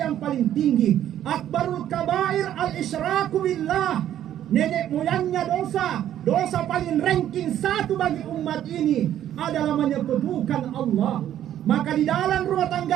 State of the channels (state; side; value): quieter; left; 11.3 dB